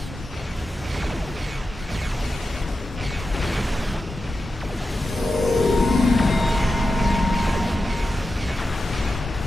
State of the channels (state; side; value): normal; both; correlation 0.91